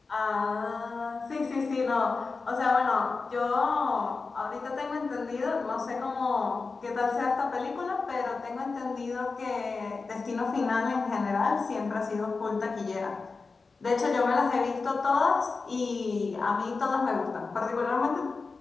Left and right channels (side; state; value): right; quieter; 4.2 dB